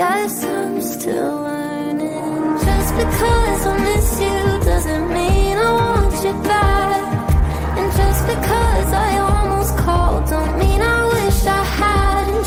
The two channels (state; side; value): identical; both; correlation 1.00